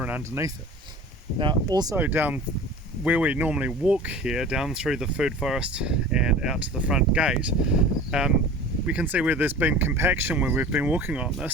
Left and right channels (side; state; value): both; normal; correlation 0.39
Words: and underneath it. Now also down where we normally walk here, down through the food forest and out to the front gate, we can see where there's been compaction when we've been walking on